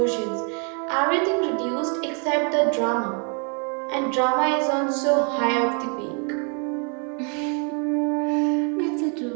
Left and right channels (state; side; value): quieter; left; 39.0 dB